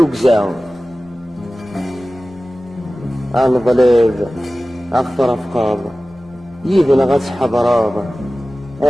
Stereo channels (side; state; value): both; normal; correlation 0.96